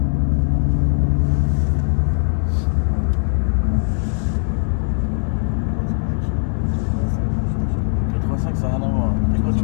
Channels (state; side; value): silent; right; 66 dB below the other